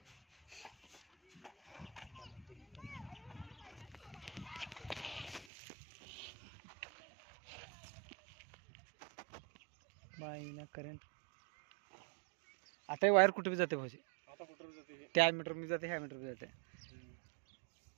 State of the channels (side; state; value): left; drops out; at 5.5 s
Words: बाई ना करंट. आता वायर कुठे बी जाते भाऊजी. आता कुठं जाते त्या मीटर मी जाते ह्या मीटर बी जाते.